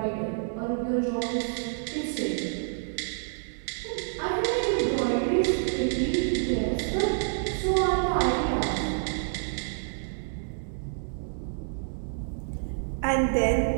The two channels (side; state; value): left; silent; digital silence